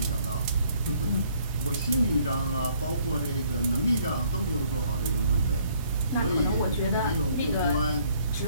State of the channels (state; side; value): inverted; both; correlation -0.64